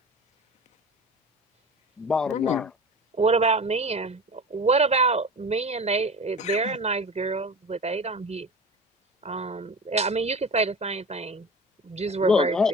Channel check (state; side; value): normal; both; correlation 0.34